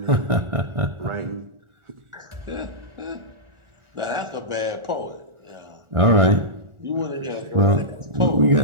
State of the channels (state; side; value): late; left; 1.4 ms